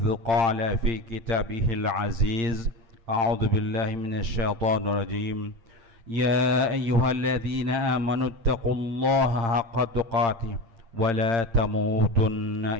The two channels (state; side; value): late; left; 8.8 ms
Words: قال في كتابه العزيز أعوذ بالله من الشيطان الرجيم يا أيها الذين آمنوا اتقوا الله حق تقاته ولا تموتن